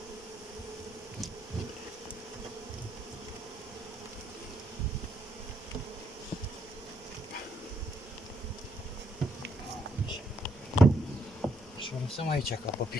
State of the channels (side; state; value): both; normal; correlation 0.74